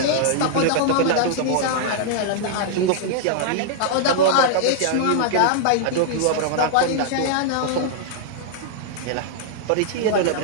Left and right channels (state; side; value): different; both; correlation -0.01